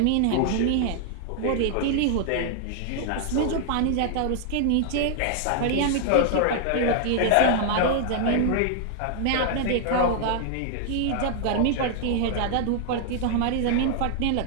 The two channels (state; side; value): different; both; correlation 0.00